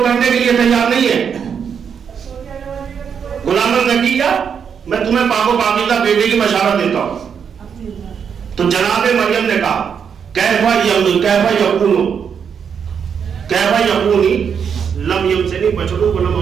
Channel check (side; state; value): left; quieter; 7.2 dB